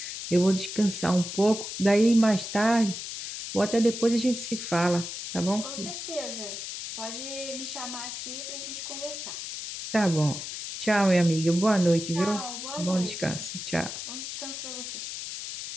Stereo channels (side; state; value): left; noise; hiss, 7 dB below the sound